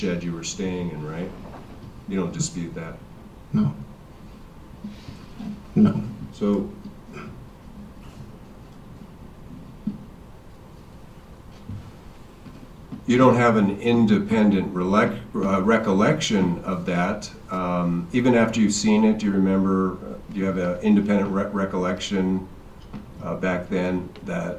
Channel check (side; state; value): both; identical; correlation 1.00